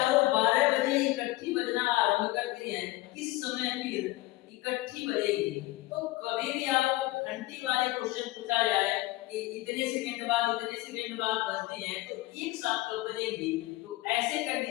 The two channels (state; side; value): quieter; right; 19.2 dB